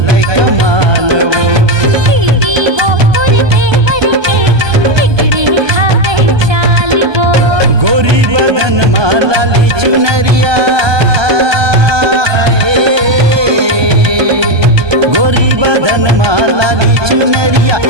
कमाल वो दीदी वो तोर देवर के बिगड़े हावे चाल वो गोरी बदन माला ली चुनरिया गोरी बदन माला ली चुनरिया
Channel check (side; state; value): left; late; 1.2 ms